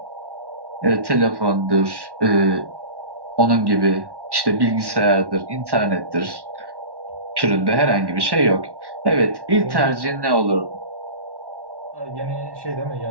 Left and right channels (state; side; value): late; left; 1.1 ms